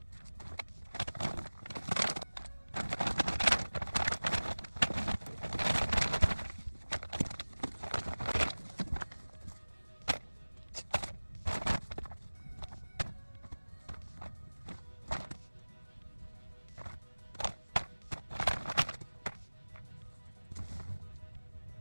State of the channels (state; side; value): inverted; both; correlation -1.00